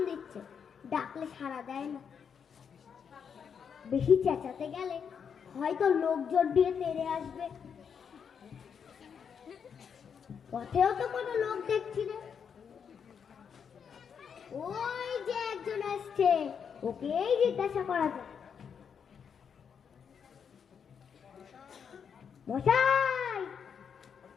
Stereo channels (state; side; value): quieter; right; 7.1 dB